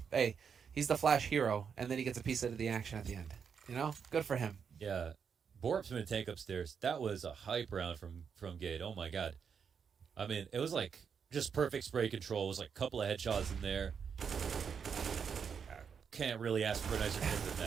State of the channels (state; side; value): quieter; left; 6.8 dB